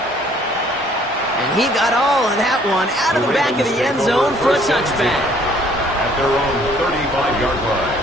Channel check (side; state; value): both; normal; correlation 0.60